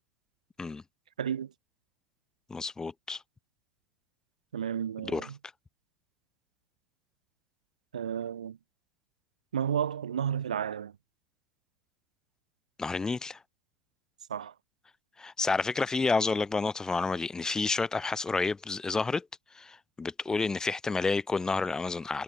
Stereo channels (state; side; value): normal; both; correlation 0.57